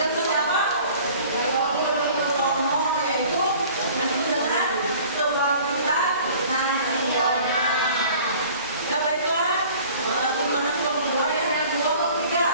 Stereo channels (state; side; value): inverted; both; correlation -0.48